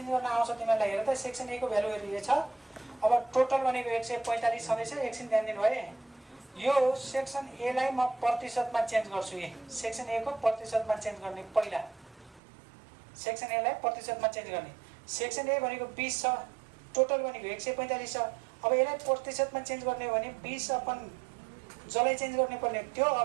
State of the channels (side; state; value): left; drops out; at 12.4 s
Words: गर्न आउँछ तिमीहरूलाई। हेर त सेक्सन ए को भ्यालु हेरिए छ। अब टोटल भनेको 145 छँदैछ। एकछिन ध्यान दिनु भए यो सेक्सन एलाई म प्रतिशतमा चेन्ज गर्छु। सेक्सन ए को प्रतिशतमा चेन्ज गर्ने पहिला सेक्सन एलाई प्रतिशतमा चेन्ज गर्ने। सेक्सन ए भनेको 20 छ, टोटल भनेको 145 छ। अब यसलाई प्रतिशतमा चेन्ज गर्ने हो भने 20 अपन जसलाई चेन्ज गर्ने पर्ने त्यो